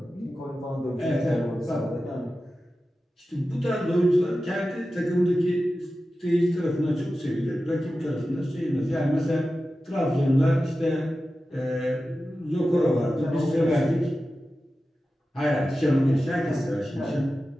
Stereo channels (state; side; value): normal; both; correlation 0.93